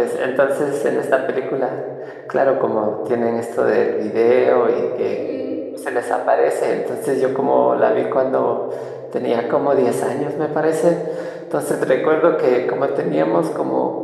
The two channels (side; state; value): both; identical; correlation 1.00